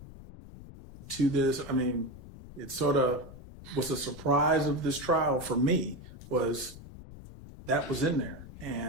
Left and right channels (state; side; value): noise; left; rumble, 15 dB below the sound